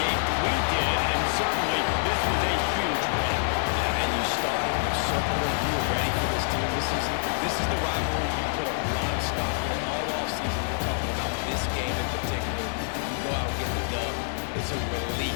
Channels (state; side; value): silent; right; digital silence